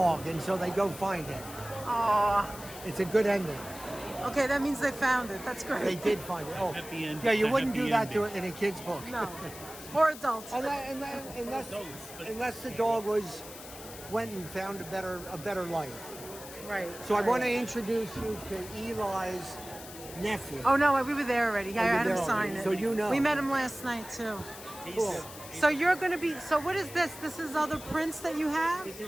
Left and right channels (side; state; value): left; noise; hiss, 14 dB below the sound